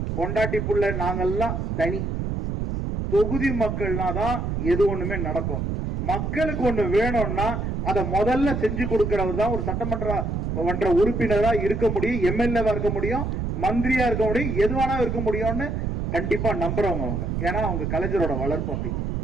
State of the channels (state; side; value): noise; right; rumble, 2 dB below the sound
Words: பொண்டாட்டி புள்ள நாங்கெல்லாம் தனி. தொகுதி மக்கள்னா தான் எது ஒண்ணுமே நடக்கும். மக்களுக்கு ஒண்ணு வேணும்னா அதை முதல்ல செஞ்சு கொடுக்கிறவர் தான் ஒரு சட்டமன்ற உறுப்பினரா இருக்க முடியும், எம்எல்ஏவா இருக்க முடியும், மந்திரியா இருக்க முடியும், எதுவானா இருக்க முடியும்னு கண்டிப்பா நம்புறவங்க அவங்க. ஏன்னா அவங்க கலைஞரோட வளர்ப்பு அப்படி.